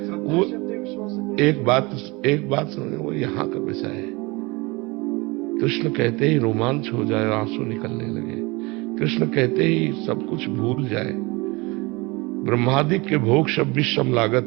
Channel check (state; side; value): quieter; left; 25.0 dB